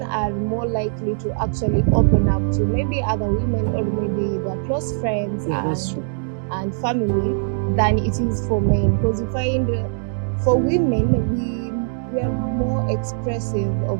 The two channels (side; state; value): left; silent; digital silence